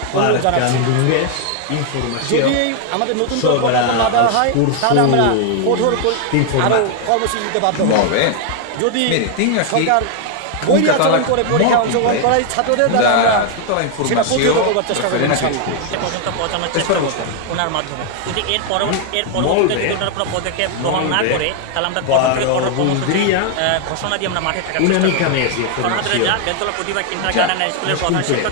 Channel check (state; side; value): different; both; correlation 0.00